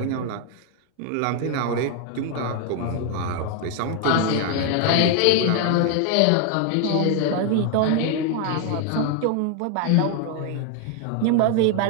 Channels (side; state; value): both; different; correlation 0.01